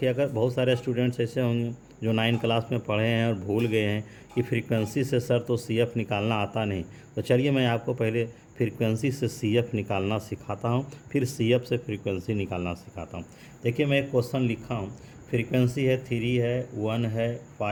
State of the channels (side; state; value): both; identical; correlation 1.00